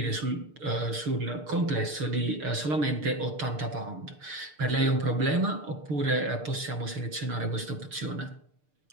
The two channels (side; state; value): left; late; 6.7 ms